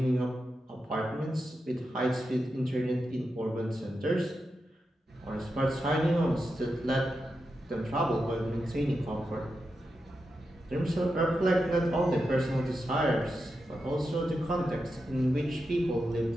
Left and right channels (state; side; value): normal; both; correlation 0.88